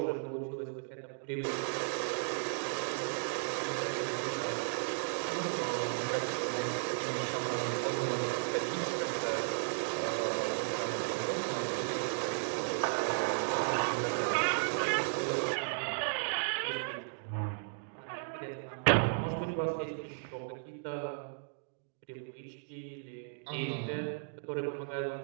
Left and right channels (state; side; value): silent; left; digital silence